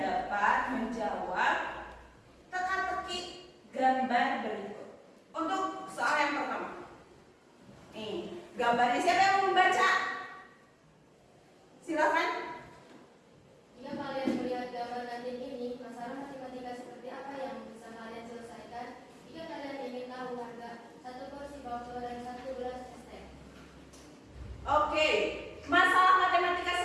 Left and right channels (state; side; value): identical; both; correlation 1.00